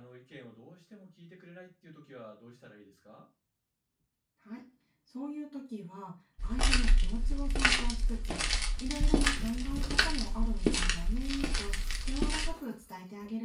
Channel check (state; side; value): identical; both; correlation 1.00